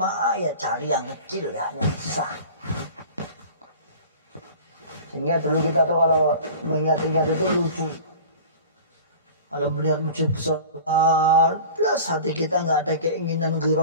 ya cari yang kecil ya, yang sah. Sehingga dulu kita tuh kalau mengingat-ingat itu lucu. Kalau melihat masjid besar, plus hati kita nggak ada keinginan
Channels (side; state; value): both; inverted; correlation -0.39